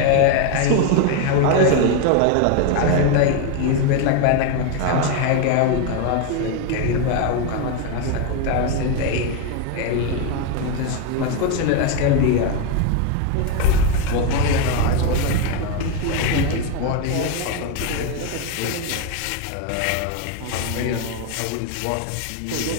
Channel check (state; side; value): different; both; correlation 0.01